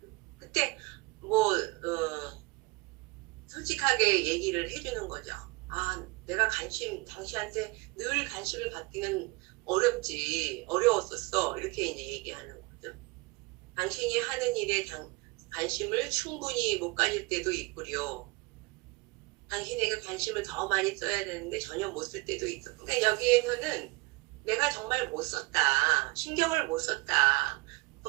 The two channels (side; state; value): left; quieter; 24.2 dB